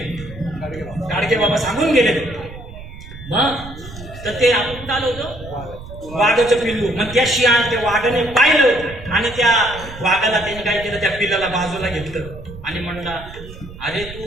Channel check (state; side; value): noise; right; rumble, 14 dB below the sound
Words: गाडगे बाबा सांगून गेले. मग तर ते आपण चालू होतं वाघाचं पिल्लू. मग त्या शियाळ त्या वाघाने पाहिलं आणि त्या वाघाला त्यांनी काय केलं, त्या पिल्लाला बाजूला घेतलं आणि म्हणला, अरे